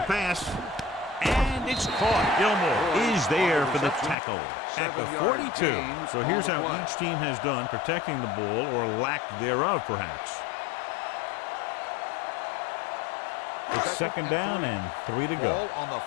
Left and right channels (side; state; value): right; drops out; at 4.2 s